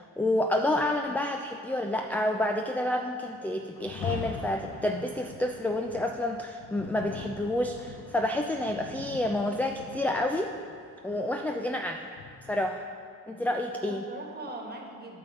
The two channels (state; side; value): normal; both; correlation 0.68